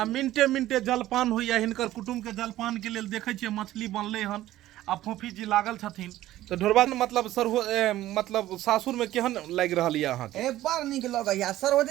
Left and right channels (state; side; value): quieter; left; 14.7 dB